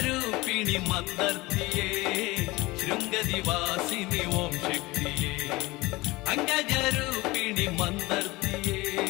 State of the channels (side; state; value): right; quieter; 21.4 dB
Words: ಮಂದರ್ತಿಯೇ ಶೃಂಗದಿವಾಸಿನಿ ಓಂ ಶಕ್ತಿಯೇ. ಅಂಗಜರೂಪಿಣಿ ಮಂದರ್ತಿಯೇ